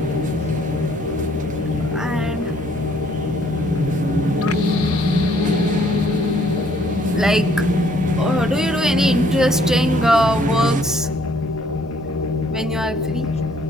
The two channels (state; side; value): normal; both; correlation 0.63